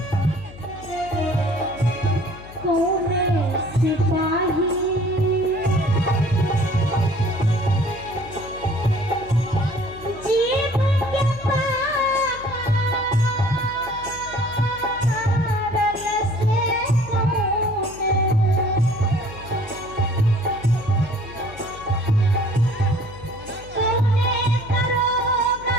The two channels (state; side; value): noise; left; hum, 17 dB below the sound